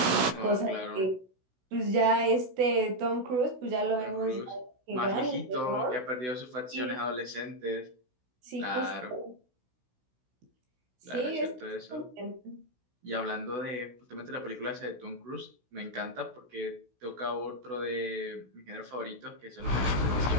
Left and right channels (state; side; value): late; left; 16 ms